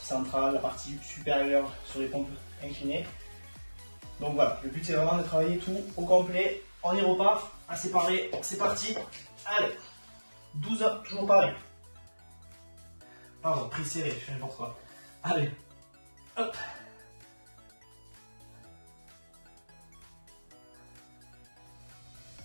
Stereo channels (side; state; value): both; inverted; correlation -1.00